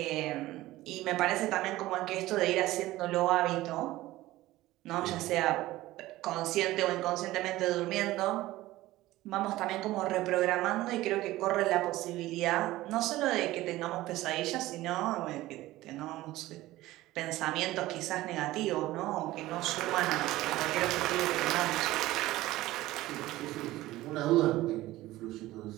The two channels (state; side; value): quieter; left; 17.0 dB